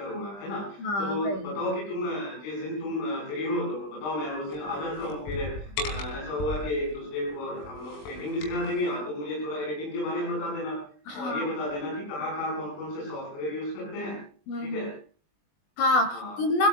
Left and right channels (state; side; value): late; right; 20 ms